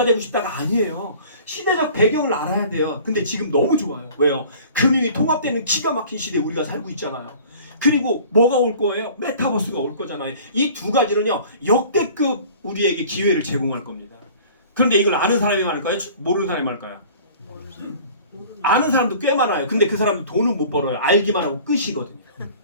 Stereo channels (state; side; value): inverted; both; correlation -0.46